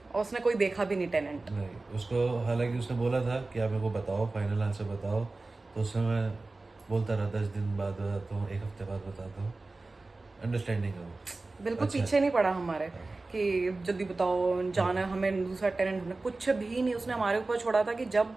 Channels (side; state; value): left; quieter; 3.3 dB